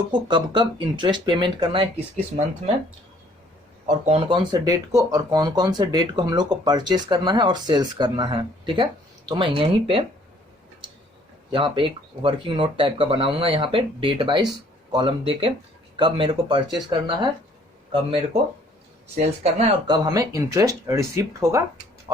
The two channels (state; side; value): normal; both; correlation 0.60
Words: को कब कब इंटरेस्ट पेमेंट करना है, किस किस मंथ में, और कौन कौन से डेट को, और कौन कौन से डेट को हम लोग को परचेस करना है और सेल्स करना है। ठीक है, तो मैं यहीं पे यहाँ पे एक वर्किंग नोट टाइप का बनाऊंगा, यहाँ पे डेट वाइज कॉलम देके कब मेरे को परचेस करना है, कब मेरे को सेल्स करना है, और कब हमें इंटरेस्ट रिसिप्ट होगा